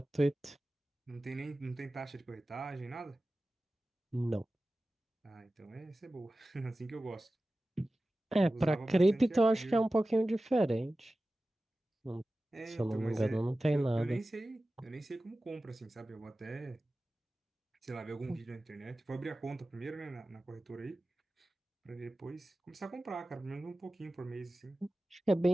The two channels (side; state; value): both; normal; correlation 0.96